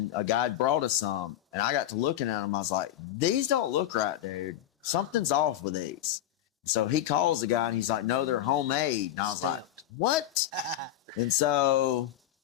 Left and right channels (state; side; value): quieter; right; 12.2 dB